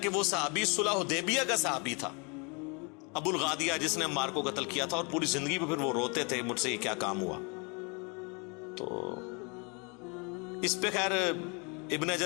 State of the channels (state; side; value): quieter; right; 32.2 dB